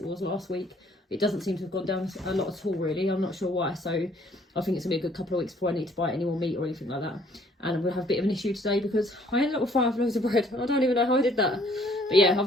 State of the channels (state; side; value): normal; both; correlation 0.61